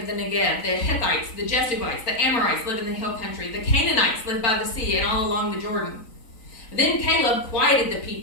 the Negev. The Hittites, the Jebusites, the Amorites live in the hill country. The Canaanites live by the sea and all along the Jordan. Then Caleb quieted the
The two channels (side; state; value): right; late; 3.9 ms